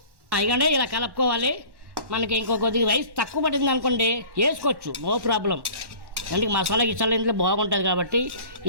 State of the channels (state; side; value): late; left; 1.1 ms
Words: ఇకండి ఇలా కలుపుకోవాలి. మనకి ఇంకో కొద్దిగా రైస్ తక్కువ పడింది అనుకోండి వేసుకోవచ్చు, నో ప్రాబ్లం. అంటే మసాలా గిసాలా ఇంట్లో బాగుంటుంది కాబట్టి